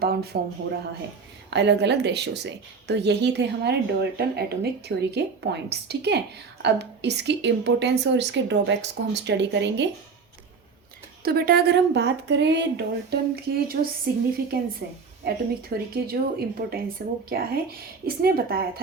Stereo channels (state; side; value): quieter; left; 5.0 dB